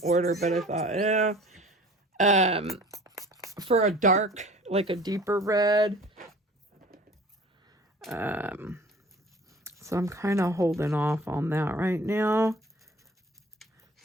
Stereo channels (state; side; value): normal; both; correlation 0.46